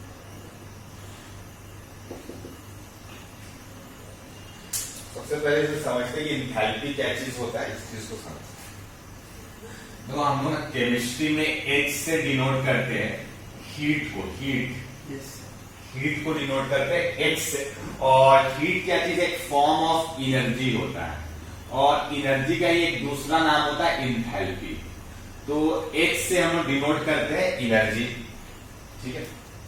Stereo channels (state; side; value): identical; both; correlation 1.00